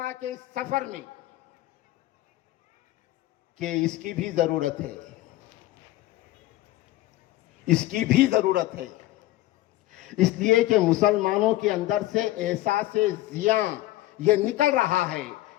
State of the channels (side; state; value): right; quieter; 16.3 dB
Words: کے اس سفر میں کہ اس کی بھی ضرورت ہے، اس کی بھی ضرورت ہے، اس لیے کہ مسلمانوں کے اندر سے احساس زیاں یہ نکل رہا ہے۔